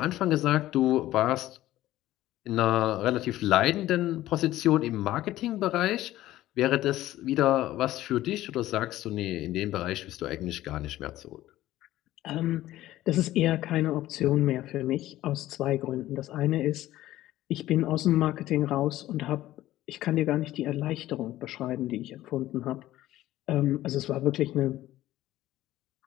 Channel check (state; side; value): quieter; right; 15.0 dB